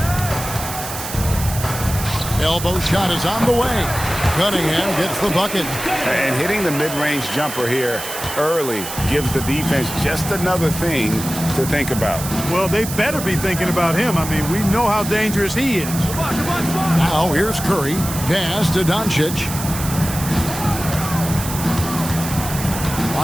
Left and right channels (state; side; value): noise; right; hiss, 8 dB below the sound